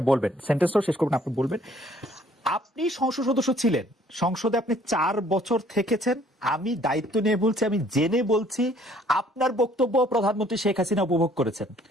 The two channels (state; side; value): normal; both; correlation 0.60